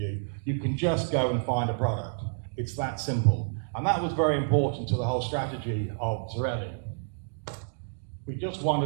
You can just go and find a product. It's that simple. And that was very important to the whole strategy of Zarelli. We just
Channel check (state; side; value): silent; left; digital silence